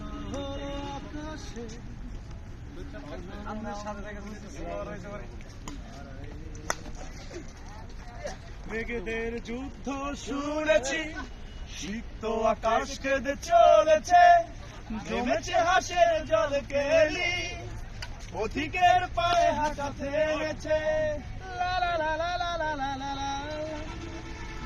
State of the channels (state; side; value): identical; both; correlation 1.00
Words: আকাশে। মেঘেদের যুদ্ধ শুনেছি, সিক্ত আকাশ কেঁদে চলেছে, জমেছে হাসের জল কেলি, পথিকের পায়ে হাঁটা থেমেছে।